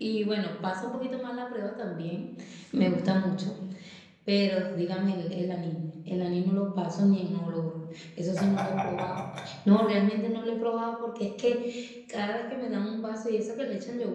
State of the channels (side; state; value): both; identical; correlation 1.00